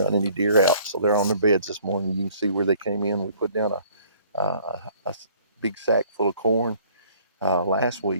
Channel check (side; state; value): both; inverted; correlation -0.57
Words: run any deer out, so they're on their beds this morning. You can see where they came in. We put down a big sack full of corn last